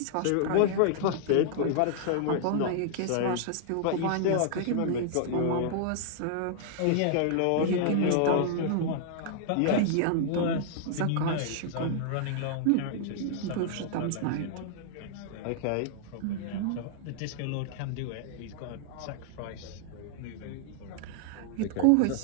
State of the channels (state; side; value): different; both; correlation -0.01